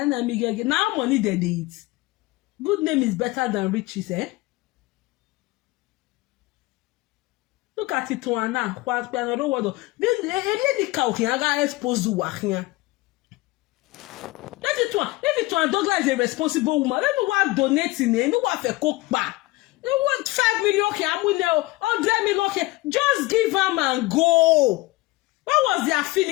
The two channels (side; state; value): right; quieter; 20.7 dB